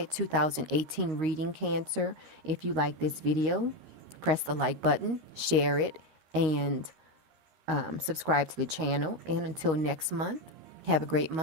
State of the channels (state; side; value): late; left; 13 ms